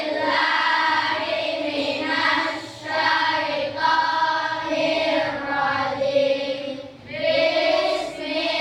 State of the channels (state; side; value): identical; both; correlation 1.00